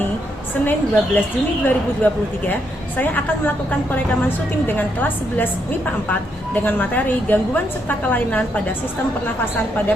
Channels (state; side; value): normal; both; correlation 0.77